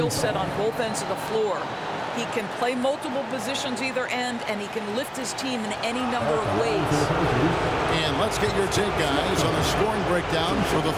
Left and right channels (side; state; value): both; identical; correlation 1.00